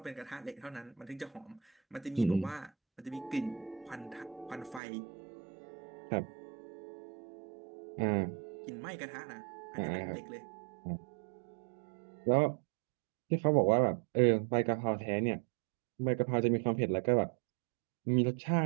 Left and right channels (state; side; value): drops out; left; at 4.8 s